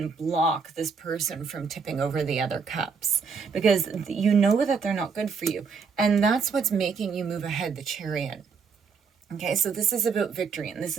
block this person from tipping over the other cups, because you know that they're not good for you. And that's what's making you move ahead, the Chariot. Okay, so this is about victory, and this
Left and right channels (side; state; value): left; quieter; 5.5 dB